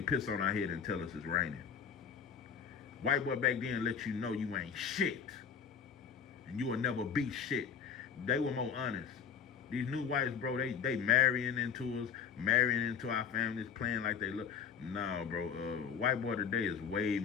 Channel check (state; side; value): quieter; right; 7.2 dB